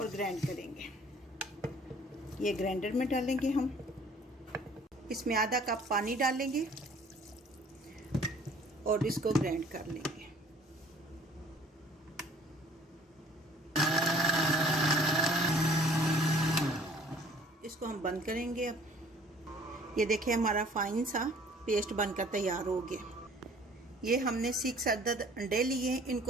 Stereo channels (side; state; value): both; normal; correlation 0.54